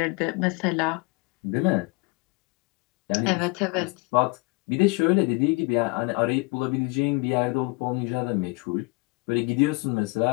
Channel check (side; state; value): right; quieter; 26.9 dB